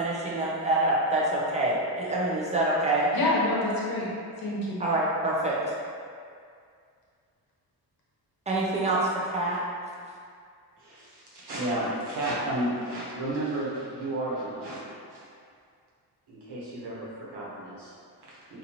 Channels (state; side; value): normal; both; correlation 0.08